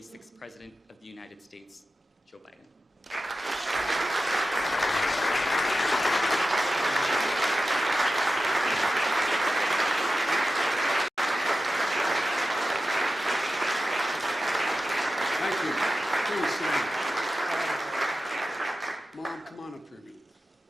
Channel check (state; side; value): normal; both; correlation 0.92